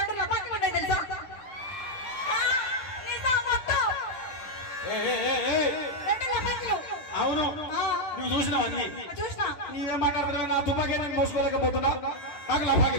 లపాట్లు ఉంటాయి తెలుసా? అవును నువ్వు చూసినావు అన్ని. చూసినా. నీవేం మాట్లాడుతున్నావు? నా తుపాకీ నేను మోసుకోలేకపోతున్నా. నాకు లపాకి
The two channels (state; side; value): late; right; 10 ms